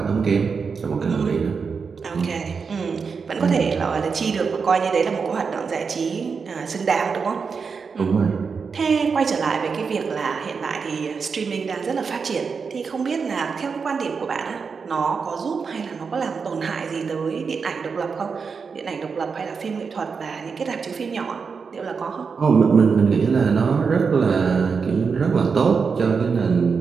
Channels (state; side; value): quieter; left; 5.4 dB